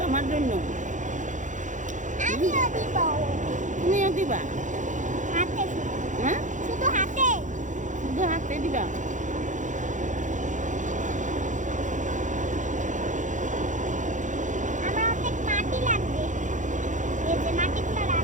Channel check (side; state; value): left; late; 0.36 ms